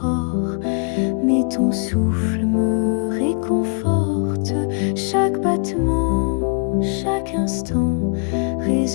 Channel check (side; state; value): right; quieter; 39.2 dB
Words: mais ton souffle me réconforte. Chaque battement, chaque instant